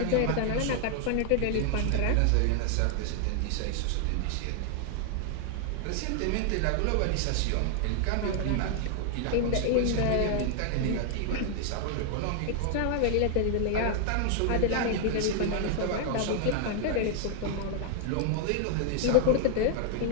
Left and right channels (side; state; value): both; different; correlation 0.00